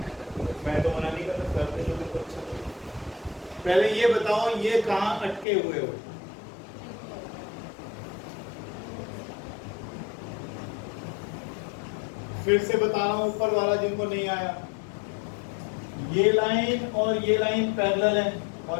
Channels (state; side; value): drops out; right; at 5.5 s